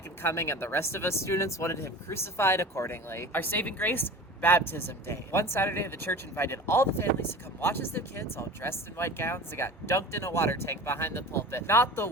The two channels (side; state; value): both; normal; correlation 0.36